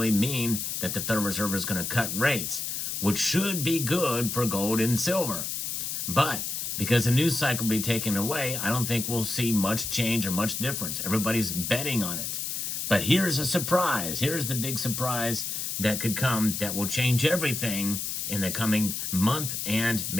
mean that the Federal Reserve is going to cut rates, which should be good for gold and silver. But because the news cycle will be taken away, I don't think we'll see much change or much difference. Everybody's betting on it. But here's a surprise. Here's the big surprise that could come that will change everything in the coming month and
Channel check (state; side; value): noise; left; hiss, 3 dB below the sound